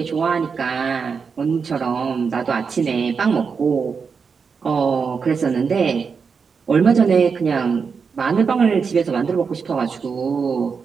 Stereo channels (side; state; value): left; quieter; 5.6 dB